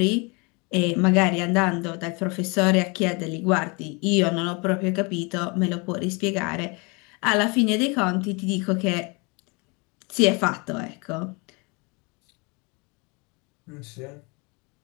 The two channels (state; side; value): quieter; right; 30.0 dB